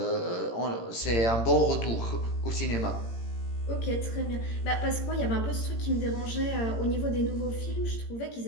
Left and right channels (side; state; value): right; late; 17 ms